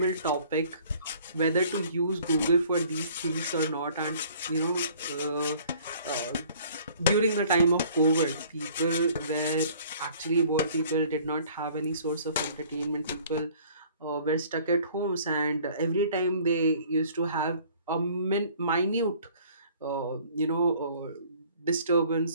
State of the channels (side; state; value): both; inverted; correlation -0.54